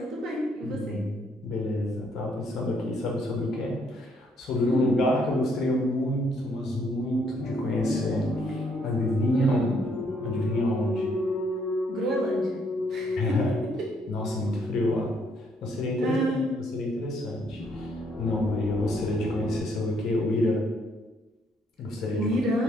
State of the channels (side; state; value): both; normal; correlation 0.70